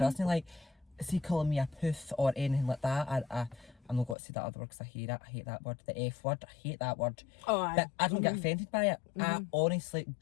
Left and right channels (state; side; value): drops out; right; at 4.2 s